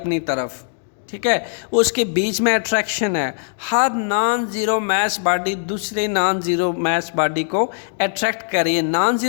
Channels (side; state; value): right; silent; digital silence